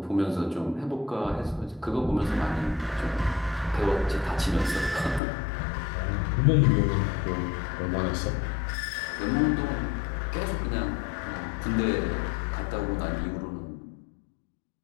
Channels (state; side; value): drops out; right; at 5.2 s